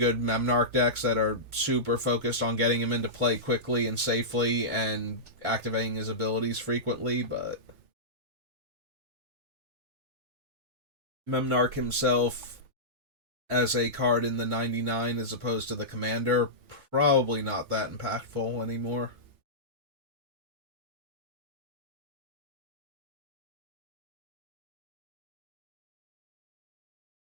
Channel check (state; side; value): late; left; 3.4 ms